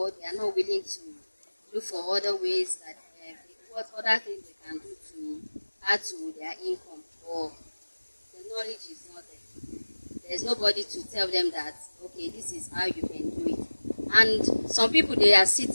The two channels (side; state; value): both; inverted; correlation -1.00